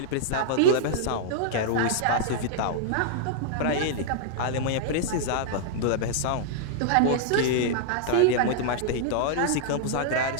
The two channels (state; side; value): different; both; correlation -0.01